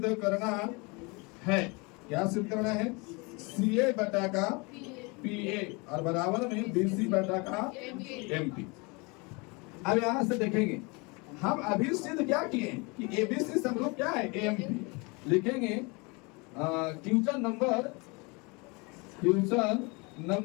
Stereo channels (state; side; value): quieter; right; 28.6 dB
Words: करना है, क्या सिद्ध करना है, सी ए बटा का पी ए और बराबर में बी सी बटा का एम पी। अब यहाँ से देखेंगे हम अभी सिद्ध क्या किए कि एबीसी समरूप क्या है, एम पी। लिखेंगे क्वेश्चन नंबर